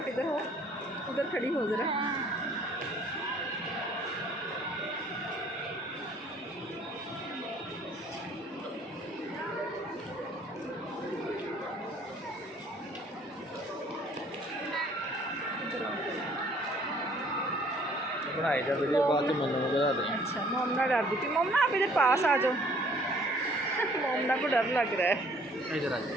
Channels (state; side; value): normal; both; correlation 0.58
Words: इधर हो, उधर खड़ी हो जरा। बनाई जा वीडियो बाद में मम्मा को बता दें। अच्छा मोमना डर दी थी। मोमना आप इधर पास आ जाओ। मोमना को डर लग रहा है। इधर आ